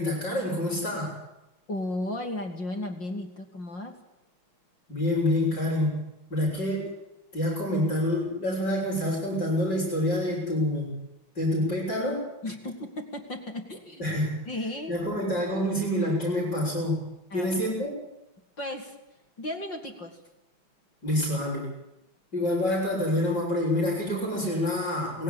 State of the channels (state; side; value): late; right; 5.7 ms